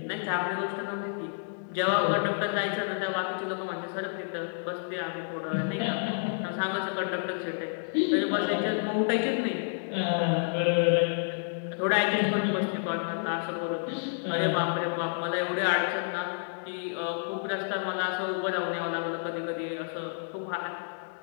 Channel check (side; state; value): right; silent; digital silence